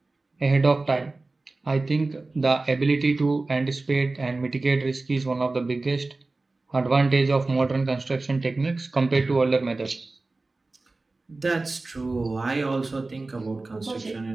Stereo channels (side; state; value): left; quieter; 3.3 dB